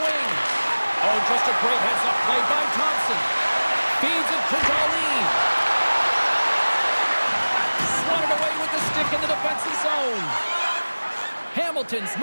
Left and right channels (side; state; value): both; inverted; correlation -1.00